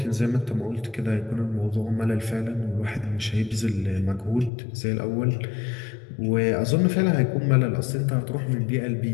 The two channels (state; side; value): drops out; right; at 4.5 s